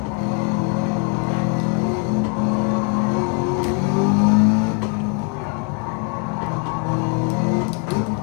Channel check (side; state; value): right; quieter; 38.6 dB